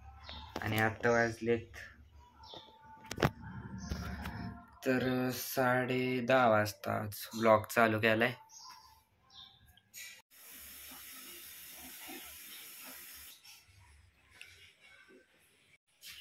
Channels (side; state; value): both; identical; correlation 1.00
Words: आणि आत्ता वाजलेत तर 10:30 वाजता आज ब्लॉग चालू केलाय.